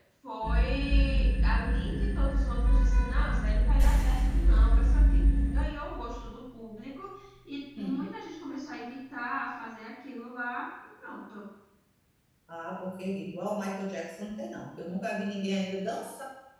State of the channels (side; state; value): both; identical; correlation 1.00